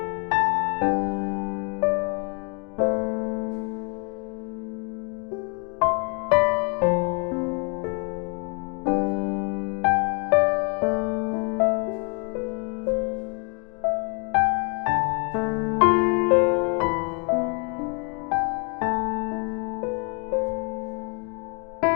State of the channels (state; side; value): quieter; right; 35.1 dB